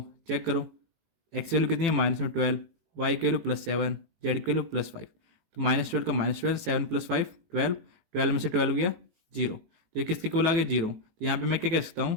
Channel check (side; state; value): left; late; 19 ms